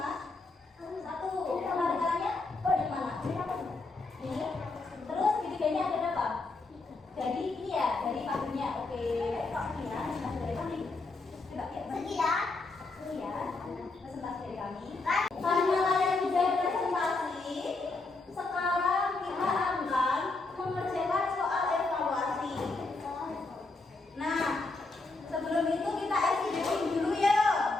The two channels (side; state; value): right; quieter; 3.5 dB